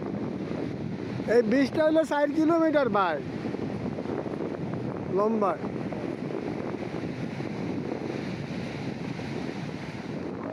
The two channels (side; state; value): both; identical; correlation 1.00